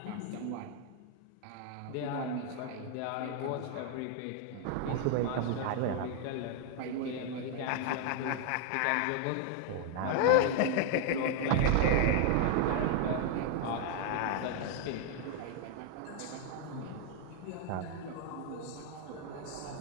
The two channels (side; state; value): both; different; correlation 0.00